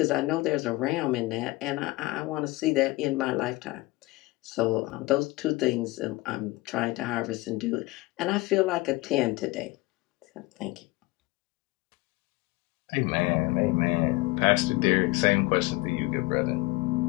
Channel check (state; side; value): quieter; right; 20.9 dB